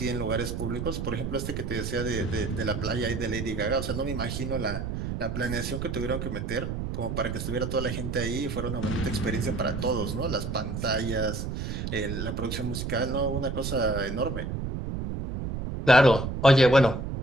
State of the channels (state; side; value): noise; right; rumble, 4 dB below the sound